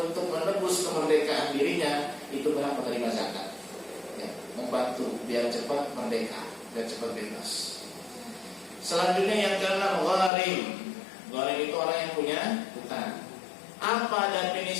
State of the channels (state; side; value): drops out; right; at 10.3 s